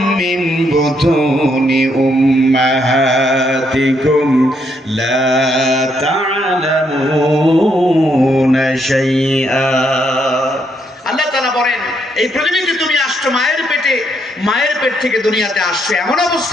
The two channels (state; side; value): normal; both; correlation 0.75